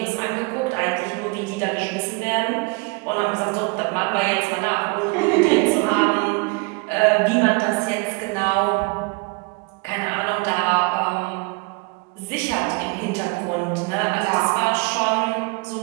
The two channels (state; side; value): quieter; left; 28.2 dB